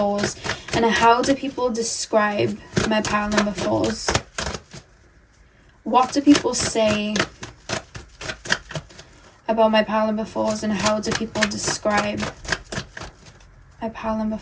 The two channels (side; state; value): both; identical; correlation 1.00